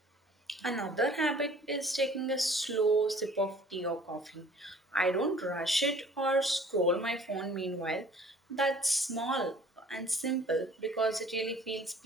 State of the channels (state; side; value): normal; both; correlation 0.52